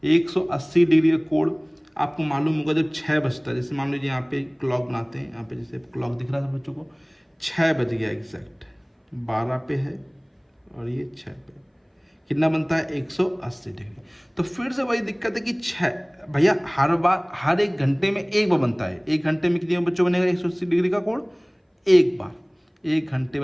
180 डिग्री का कोण आपको मालूम होगा, जब 6 बजता है, जैसे मान लीजिए यहाँ पे क्लॉक बनाते हैं, यहाँ पे जैसे क्लॉक दिख रहा था बच्चों को, 6 बज गया एग्जैक्ट, 12 पे है और ये 6 पे, कितना बनता है, 180 डिग्री। तो फिर से वही दिक्कत है कि 6 भैया हर बार, हर 1 घंटे में एक बार बनता है, 1 घंटे में कितने बच्चों बनेगा 180 डिग्री का कोण, एक बार, 1 घंटे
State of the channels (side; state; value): both; identical; correlation 1.00